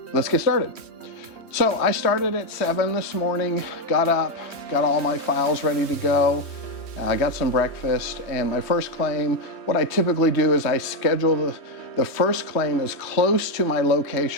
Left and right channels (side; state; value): right; late; 3.1 ms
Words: let's get started. So I started at 7 this morning, got up, got all my files ready to go. I got some breakfast, and my first claim, what I typically do is I schedule the first claim as close to my